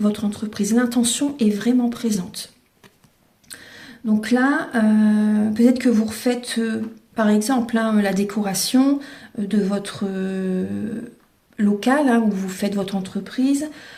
votre entreprise. L'intention est vraiment présente. Donc là, peut-être que vous refaites, par exemple, hein, la décoration de votre local, hein, où vous faites votre entreprise,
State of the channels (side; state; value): both; identical; correlation 1.00